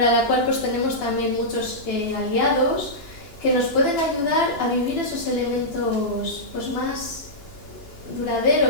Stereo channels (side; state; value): right; late; 2.9 ms